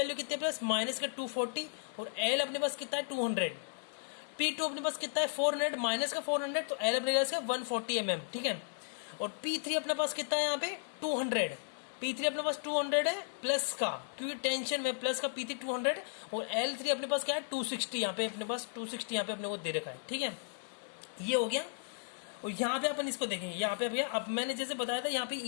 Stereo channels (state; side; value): silent; right; 54 dB below the other